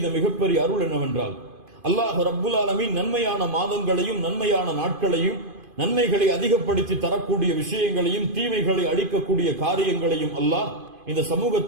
மிகப்பெரிய அருள் என்னவென்றால், அல்லாஹ் ரப்புல் ஆலமீன் நன்மையான மாதங்களையும் நன்மையான நாட்களையும் நன்மைகளை அதிகப்படுத்தி தரக்கூடிய விஷயங்களையும் தீமைகளை அழிக்கக்கூடிய காரியங்களையும் அல்லாஹ் இந்த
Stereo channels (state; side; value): late; left; 2.5 ms